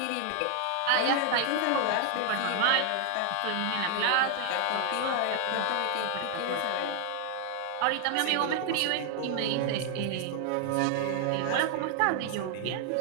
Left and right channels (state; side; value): different; both; correlation 0.00